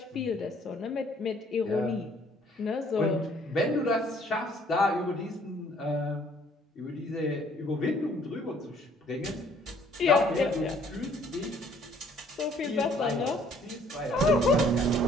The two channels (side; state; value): both; normal; correlation 0.61